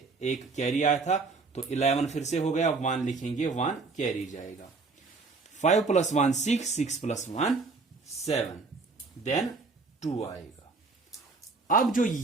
एक कैरी आया था, तो 11 फिर से हो गया, 1 लिखेंगे, 1 कैरी जाएगा। 5 + 1 6, 6 + 1 7, देन 2 आएगा। अब जो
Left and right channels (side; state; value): left; quieter; 4.1 dB